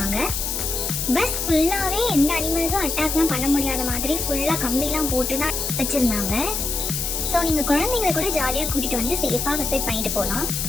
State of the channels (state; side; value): noise; left; hiss, 2 dB below the sound